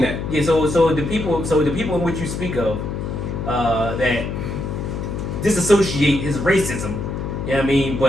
that. Yeah, so the people in which you speak of, that disassociate his racism. You know what I mean,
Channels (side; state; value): left; noise; hum, 4 dB below the sound